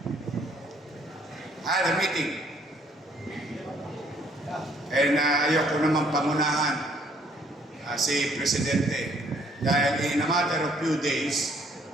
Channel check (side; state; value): both; normal; correlation 0.64